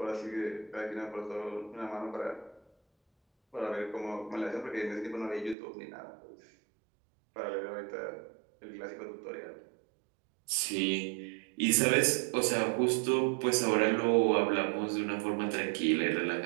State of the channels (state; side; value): drops out; left; at 5.6 s